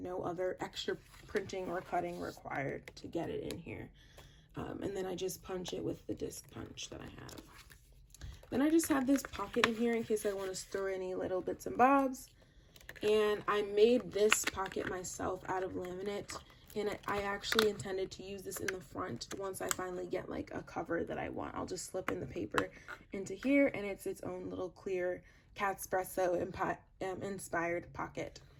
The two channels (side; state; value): both; identical; correlation 1.00